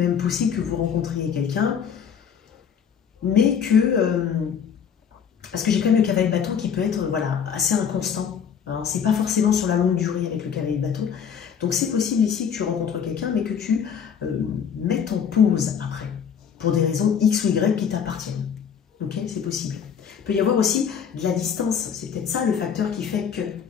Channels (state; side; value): quieter; right; 7.5 dB